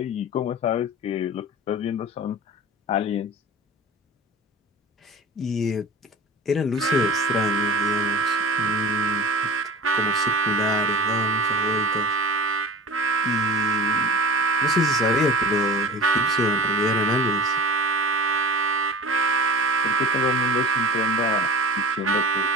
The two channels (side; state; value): both; normal; correlation 0.37